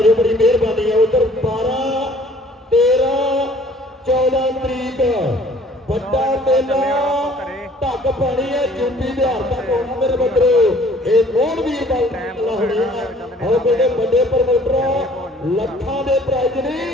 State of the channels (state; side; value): normal; both; correlation 0.55